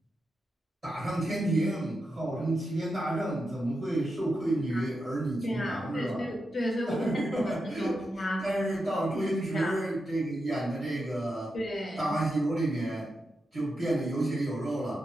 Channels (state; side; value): normal; both; correlation 0.87